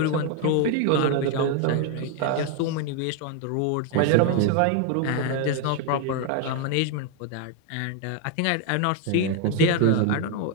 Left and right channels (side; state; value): both; different; correlation 0.01